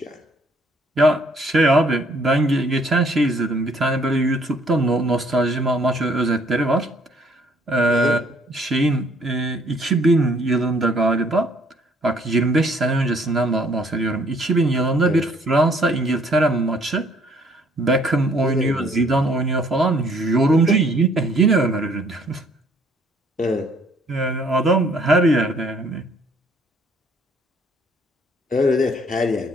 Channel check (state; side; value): normal; both; correlation 0.62